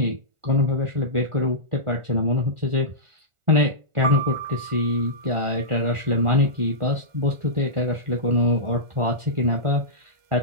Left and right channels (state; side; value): late; left; 1.4 ms